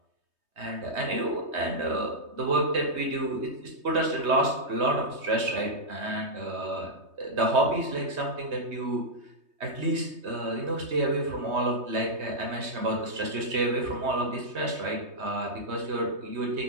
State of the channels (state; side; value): late; left; 3.2 ms